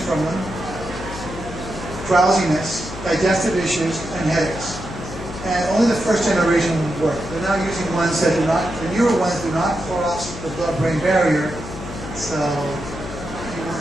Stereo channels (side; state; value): left; noise; hum, 11 dB below the sound